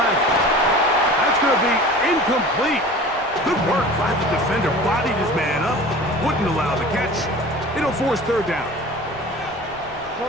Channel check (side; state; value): left; noise; rumble, 24 dB below the sound